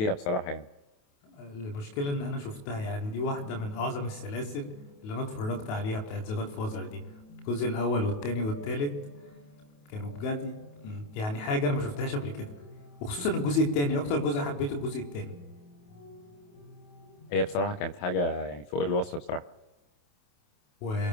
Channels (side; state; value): right; late; 28 ms